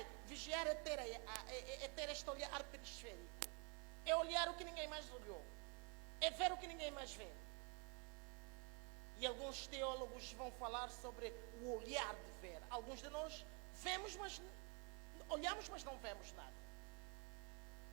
é ter este olhar periférico. É olhar o que ninguém mais olhou. É ver o que ninguém mais vê. E alguns teólogos vão falar sobre o olhar de ver. Alguns de nós vemos, mas olhamos, mas não vemos nada.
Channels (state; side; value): quieter; left; 34.5 dB